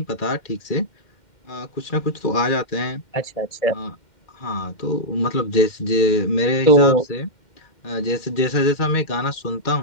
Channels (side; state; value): right; late; 2.1 ms